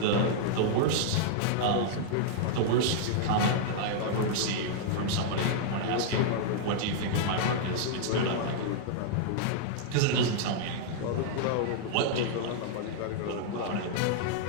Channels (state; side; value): different; both; correlation -0.01